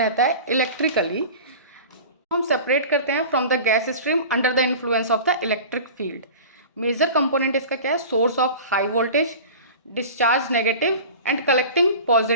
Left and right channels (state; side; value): inverted; both; correlation -0.37